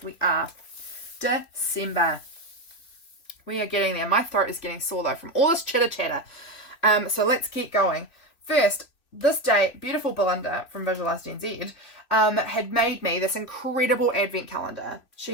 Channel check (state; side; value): late; right; 2.9 ms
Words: We are. December. We are getting there. My throat is getting sore though from all this chitter chatter. So let's keep going. First, this day, beautiful Belinda from Visualized NZ had made me this incredible advent calendar.